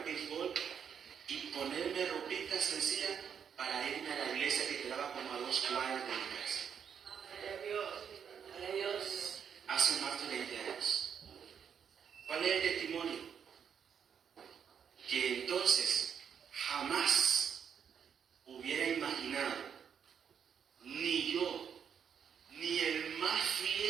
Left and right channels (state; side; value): quieter; left; 7.6 dB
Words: béisbol y ponerme ropita sencilla para irme a la iglesia que quedaba como a 2 cuadras de mi casa. Gloria a Dios. Hace más de 20 años. ¿Cuál es el testimonio? Que entonces jamás hubiera imaginado, ni yo, ni el más